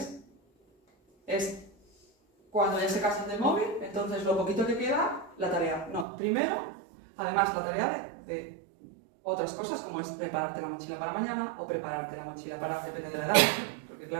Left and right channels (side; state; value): left; drops out; at 6.1 s